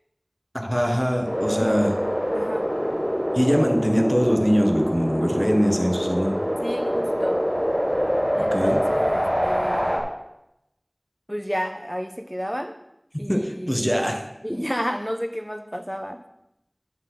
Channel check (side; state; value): both; identical; correlation 1.00